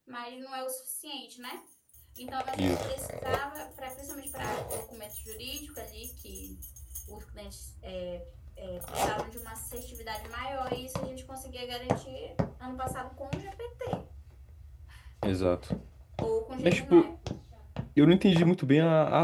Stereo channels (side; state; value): both; identical; correlation 1.00